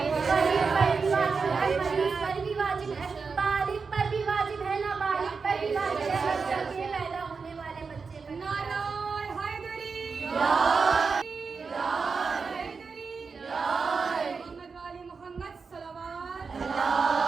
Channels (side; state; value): left; quieter; 5.0 dB